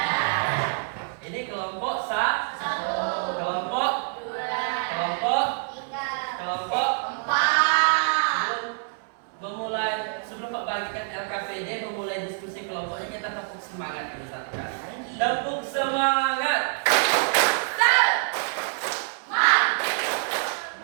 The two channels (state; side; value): silent; left; 61 dB below the other